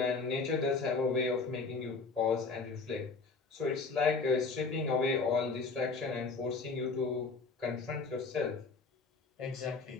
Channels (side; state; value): right; quieter; 4.3 dB